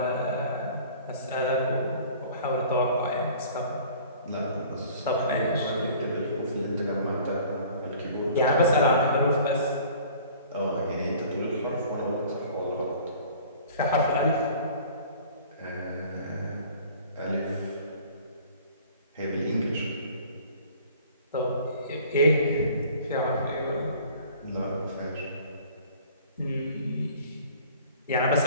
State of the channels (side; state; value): both; inverted; correlation -0.48